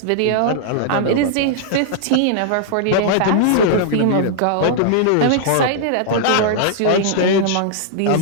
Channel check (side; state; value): both; different; correlation -0.01